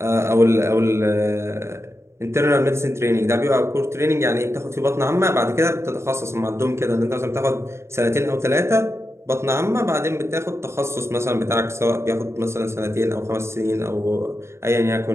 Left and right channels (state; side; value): late; left; 0.13 ms